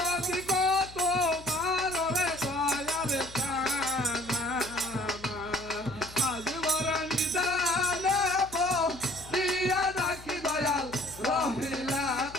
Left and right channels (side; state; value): left; noise; hum, 18 dB below the sound